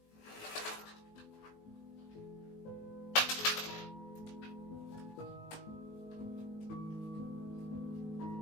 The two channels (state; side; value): late; right; 18 ms